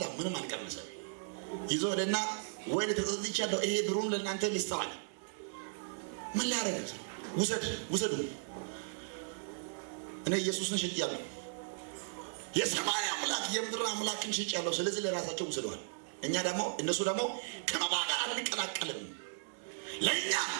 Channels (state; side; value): silent; left; digital silence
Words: ምንም አልቀመሰም። ይዞ ሄደና ወይ ተጸጽቻለሁ፣ ይሄ ብሩን ለእናንተ ልስጠዋል። ምን ሊያደርግ? ውሰዱ፣ እኔ ኢየሱስን ሽጬአለሁ፣ የሰማይ አምላክ የምድር አምላክን ሽጬአለሁ፣ ስለዚህ ለራሳቸው ውሰደዋል። እነሱ ደግሞ ከመባ ጋር አንቀላቀልም፣ ለእኛ